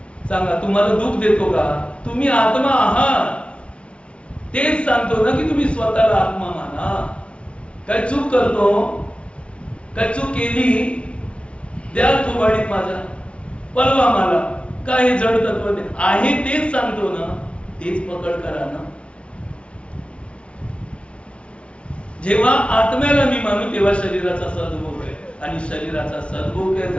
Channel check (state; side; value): late; right; 0.060 ms